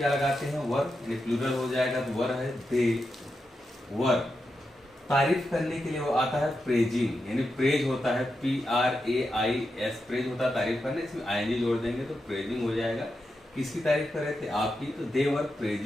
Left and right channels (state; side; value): normal; both; correlation 0.87